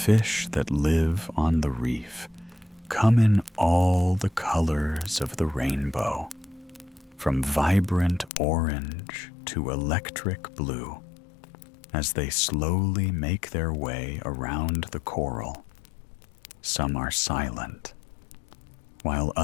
that live on the reef come in all the colors of the rainbow, from vibrant orange to electric blue, as they slowly make their way around the coral. Some are silent, while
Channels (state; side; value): drops out; right; at 8.3 s